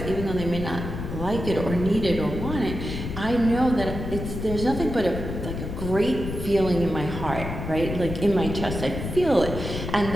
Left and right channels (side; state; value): left; noise; rumble, 6 dB below the sound